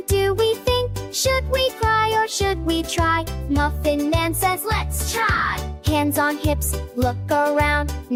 do, we think? Should we cry or should we try? Muffin Man says, let's try. Hands on hips, look around.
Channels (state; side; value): identical; both; correlation 1.00